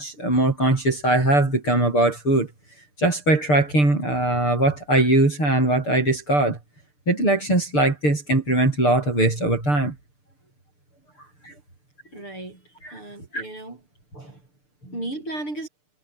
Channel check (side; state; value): right; late; 6.7 ms